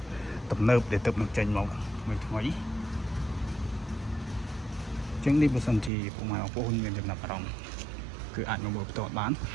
ទំនើបដែលទឹកនឹងចេញមកថ្មីចឹងនេះបើសិនជាពុកម៉ែបងប្អូនមានចំណាប់អារម្មណ៍គឺអាចមកមើលផ្ទាល់បាន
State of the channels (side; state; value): left; drops out; at 5.9 s